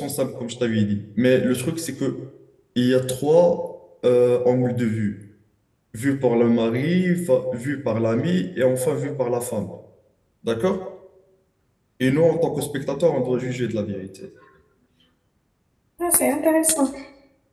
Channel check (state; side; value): identical; both; correlation 1.00